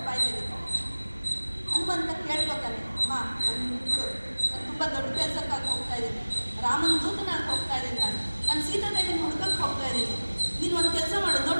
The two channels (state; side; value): inverted; both; correlation -1.00